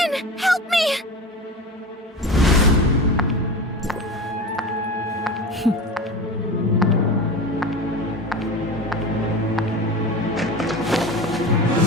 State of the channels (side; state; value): both; normal; correlation 0.30